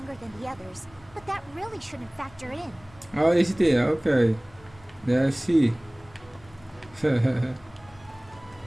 than the others, but that really shouldn't factor in. Oh, is it here? Okay. Yeah, I see. Can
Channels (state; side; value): noise; left; rumble, 25 dB below the sound